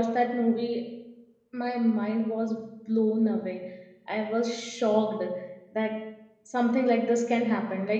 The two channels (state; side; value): identical; both; correlation 1.00